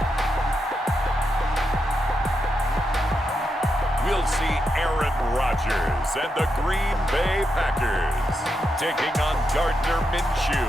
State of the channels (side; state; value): both; normal; correlation 0.84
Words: And the Green Bay Packers taking on Gardner Minshew